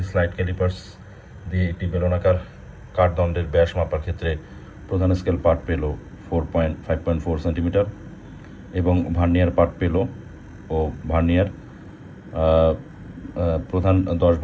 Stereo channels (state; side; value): identical; both; correlation 1.00